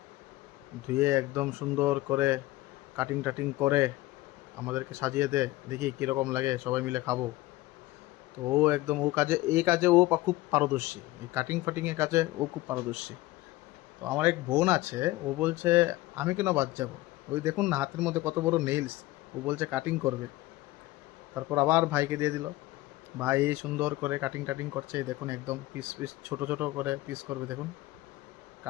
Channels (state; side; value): quieter; right; 18.0 dB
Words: ধুয়ে একদম সুন্দর করে কাটিং টাটিং করে আমাদেরকে সাজিয়ে দে, দেখি কীরকম লাগে, সবাই মিলে খাবো। তো ও একদম এই কাজে ও খুব পারদর্শী, এই কাটিং ফাটিংয়ের কাজে ও খুব পারদর্শী। তো আমার এক বোন আছে, ও বলছে আমি কেন বাদ যাবো, ওই দেখুন না হাতের মধ্যে কত বড় নেইলস, ও বলছে কাটিং করবে। তারপর আবার ভাইকে দিয়ে দিল, ভাই এই সুন্দর করে কাটিং টাটিং করছে, এই দেখুন একদম পিস পিস ছোট ছোট করে পিস করবে। দেখুন